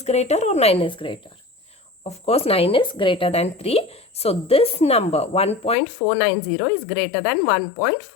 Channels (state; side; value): drops out; right; at 5.8 s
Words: greater or 9 is greater? Of course 9 is greater than 3. So this number 1.490 is greater than